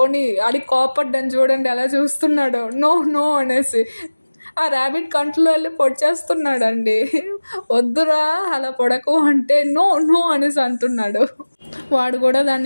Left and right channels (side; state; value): both; inverted; correlation -1.00